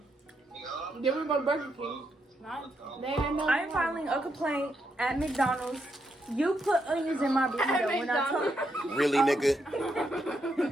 Then we were going to Burger King. They had no I'm filing a complaint at McDonald's. You put onions in my burrito when I told Really, nigga?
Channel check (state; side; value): normal; both; correlation 0.80